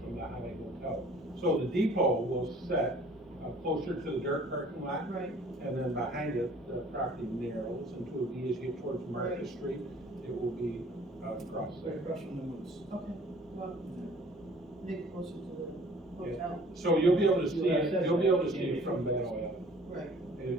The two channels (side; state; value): both; normal; correlation 0.52